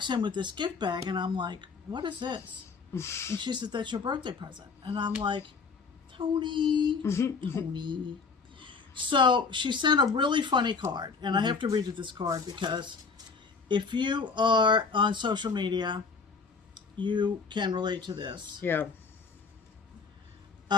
in with this gift bag, and I'm like, what is this? And she said, that's your birthday present. And I'm like, Tony. So she sent a really funny card, and I have to read you this card because if you are on social media, you can relate to this. Yeah.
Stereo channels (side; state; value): right; quieter; 4.9 dB